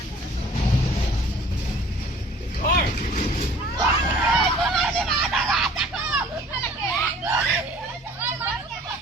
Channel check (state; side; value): normal; both; correlation 0.51